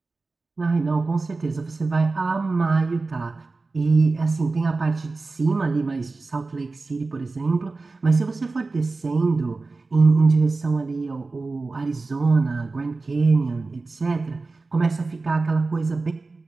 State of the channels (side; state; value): left; quieter; 3.7 dB